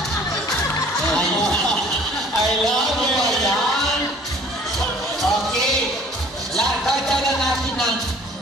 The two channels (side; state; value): both; normal; correlation 0.52